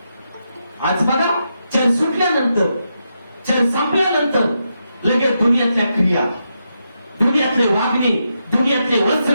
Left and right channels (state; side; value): inverted; both; correlation -0.84